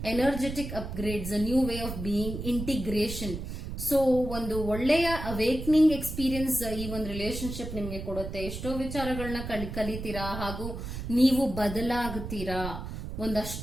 energetic upgrades, a new way of being, integration. So ಒಂದು ಒಳ್ಳೆಯ ಅವೇಕ್ನಿಂಗ್ ಎಕ್ಸ್ಪೀರಿಯನ್ಸ್ ಈ ಒಂದು ರಿಲೇಶನ್ಶಿಪ್ ನಿಮ್ಗೆ ಕೊಡುತ್ತೆ. ಎಷ್ಟೋ ವಿಚಾರಗಳನ್ನ ಕಲಿತೀರಾ ಹಾಗೂ ನೀವು ಬದಲಾಗುತ್ತೀರಾ.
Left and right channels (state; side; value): noise; right; rumble, 7 dB below the sound